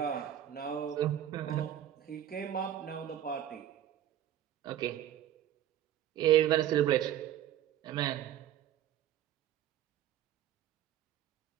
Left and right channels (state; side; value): quieter; left; 11.3 dB